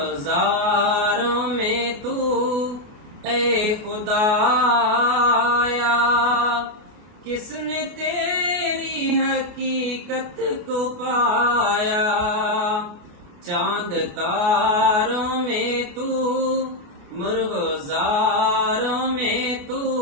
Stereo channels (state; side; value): late; left; 28 ms